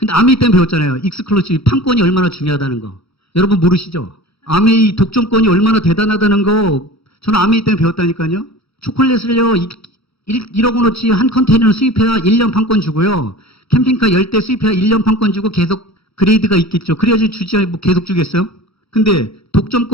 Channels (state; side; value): late; right; 0.77 ms